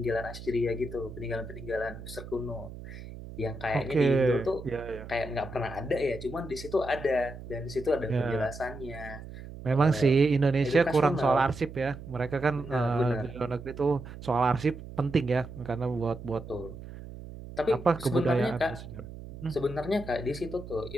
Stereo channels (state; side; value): noise; right; hum, 13 dB below the sound